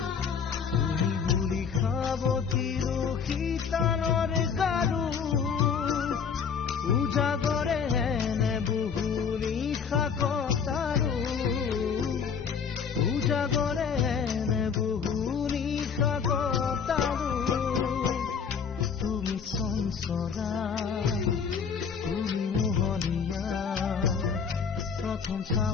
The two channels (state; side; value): quieter; right; 6.6 dB